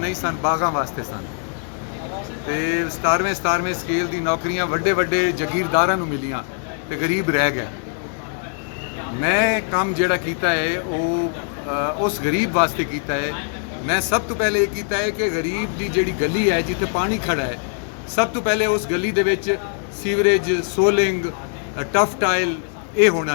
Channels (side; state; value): right; silent; 58 dB below the other